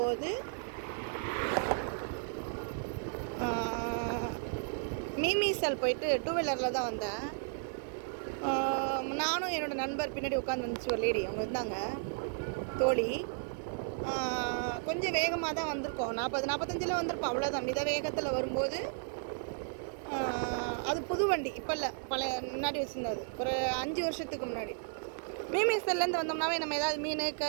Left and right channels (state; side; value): silent; left; digital silence